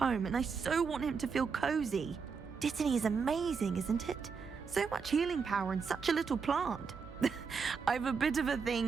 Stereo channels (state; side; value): quieter; left; 5.6 dB